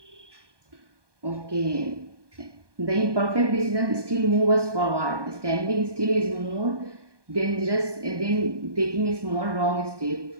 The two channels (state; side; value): late; left; 1.2 ms